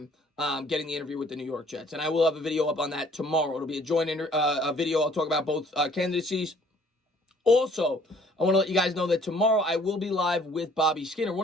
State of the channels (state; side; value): normal; both; correlation 0.58